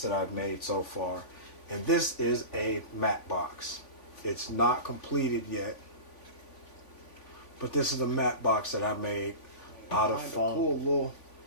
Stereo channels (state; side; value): late; right; 3.5 ms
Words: that I've made so far. And this is a matte box. It's not completed yet. But this is a matte box that I made out of foam. Cool little,